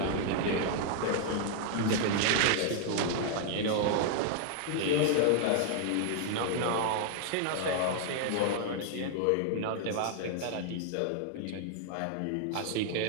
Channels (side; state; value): both; different; correlation 0.00